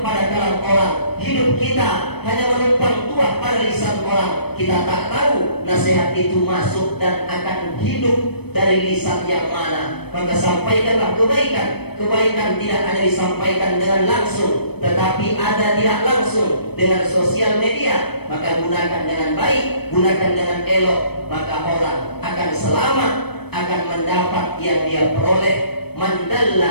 pada kalam orang. Hidup kita hanya menumpang tuah pada lisan orang. Kita tak tahu nasihat itu masuk dan akan hidup dari lisan yang mana. Maka sampaikanlah kebaikan. Kebaikan tidak hanya disampaikan dengan langsung, tetapi ada tidak langsung dengan sosial media. Maka gunakan dengan baik, gunakan dengan elok. Maka orang akan selamat, akan mendapat yang dia peroleh. Man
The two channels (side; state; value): right; late; 0.97 ms